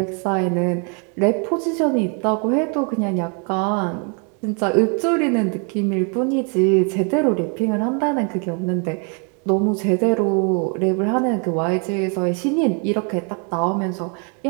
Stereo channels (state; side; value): quieter; left; 37.8 dB